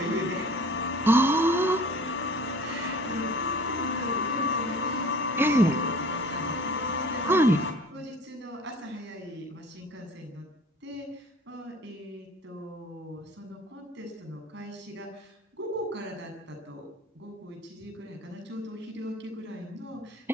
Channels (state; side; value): normal; both; correlation 0.45